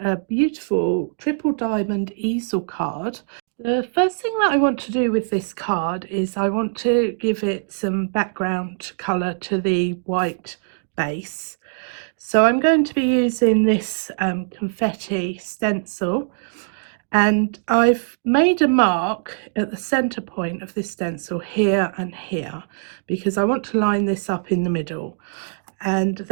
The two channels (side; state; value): left; silent; digital silence